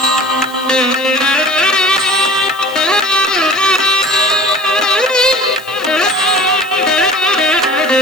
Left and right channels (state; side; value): noise; left; hiss, 21 dB below the sound